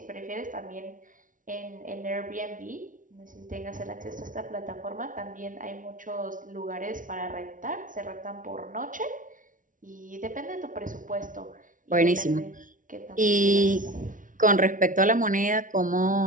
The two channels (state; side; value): late; left; 0.38 ms